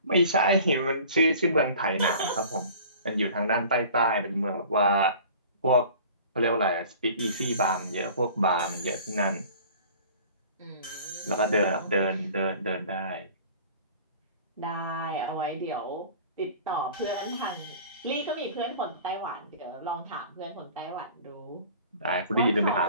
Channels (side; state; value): both; inverted; correlation -0.45